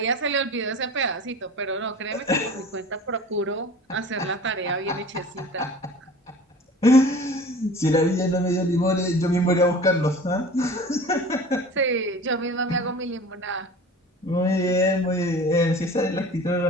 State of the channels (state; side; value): normal; both; correlation 0.41